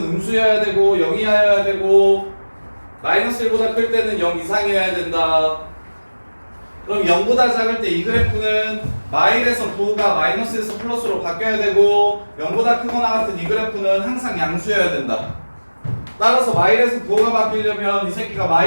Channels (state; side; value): inverted; both; correlation -1.00